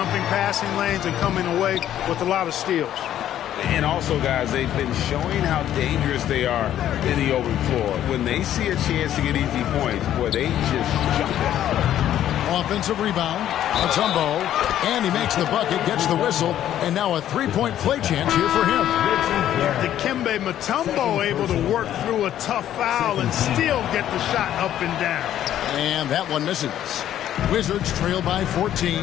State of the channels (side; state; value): right; quieter; 11.5 dB